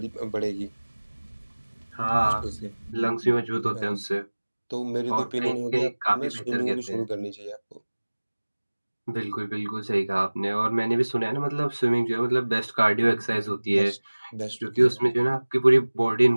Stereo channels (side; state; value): both; inverted; correlation -1.00